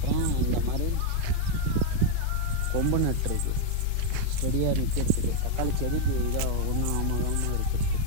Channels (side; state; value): both; different; correlation 0.00